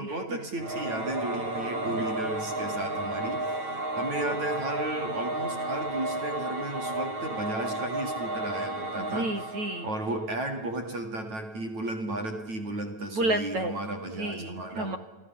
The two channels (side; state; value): left; late; 9.1 ms